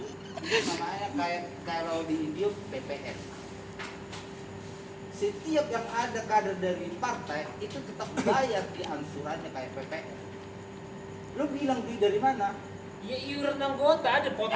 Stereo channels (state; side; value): identical; both; correlation 1.00